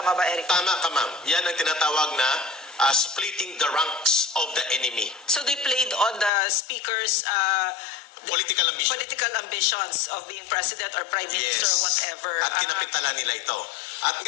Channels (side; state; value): right; drops out; at 6.3 s